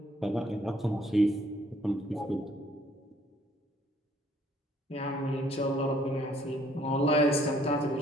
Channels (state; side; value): normal; both; correlation 0.63